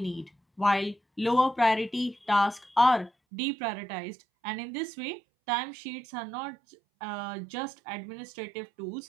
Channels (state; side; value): drops out; left; at 3.1 s